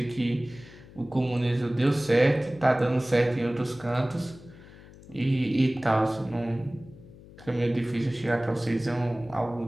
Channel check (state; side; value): noise; left; hum, 20 dB below the sound